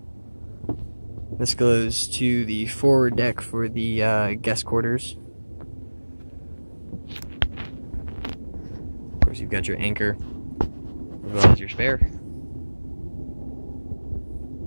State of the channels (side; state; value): both; inverted; correlation -1.00